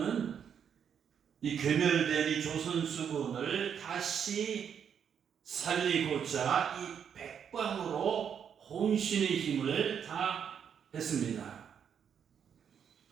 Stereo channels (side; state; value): left; quieter; 7.9 dB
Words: 이 괴멸된 이 조선 수군을 다시 살리고자 이 백방으로 혼신의 힘을 다했습니다.